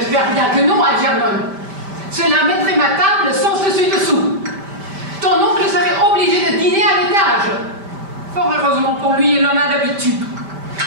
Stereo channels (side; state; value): left; late; 5.1 ms